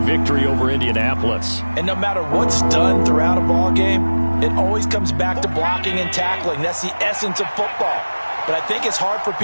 victory over Indianapolis. And no matter what's done throughout a ball game, it always comes back to blocking and tackling. That's the essence of football. but I think it's hard for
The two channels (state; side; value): inverted; both; correlation -1.00